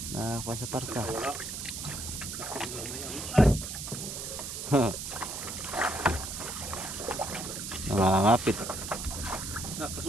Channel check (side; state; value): right; noise; hiss, 6 dB below the sound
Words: Nakakuha sa parka. Wala. Nangangapit.